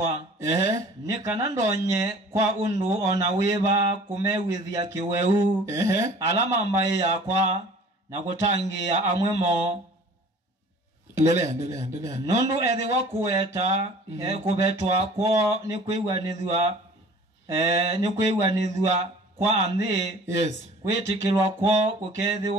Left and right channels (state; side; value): normal; both; correlation 0.47